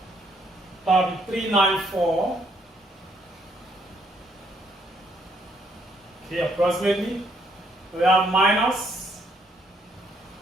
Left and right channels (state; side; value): normal; both; correlation 0.70